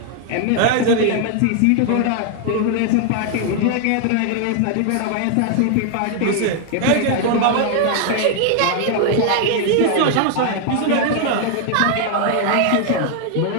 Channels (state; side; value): different; both; correlation 0.00